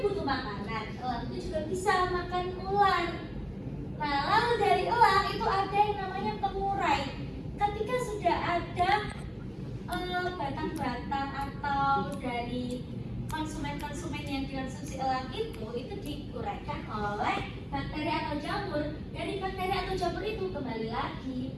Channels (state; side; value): identical; both; correlation 1.00